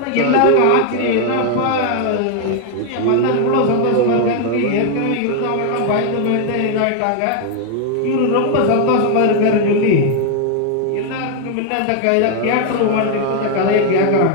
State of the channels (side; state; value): both; different; correlation 0.00